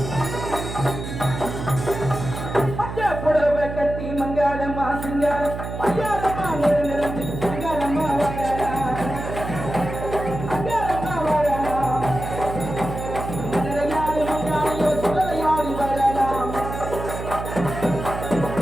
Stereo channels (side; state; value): right; noise; hum, 7 dB below the sound